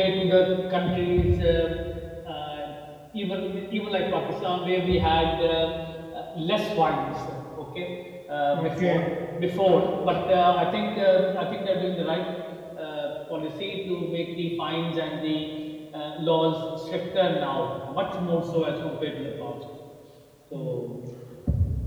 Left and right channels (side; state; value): both; identical; correlation 1.00